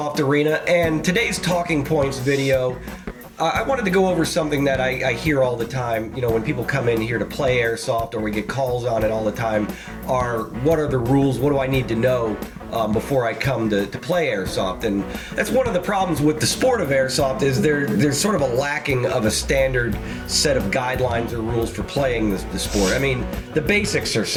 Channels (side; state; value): both; identical; correlation 1.00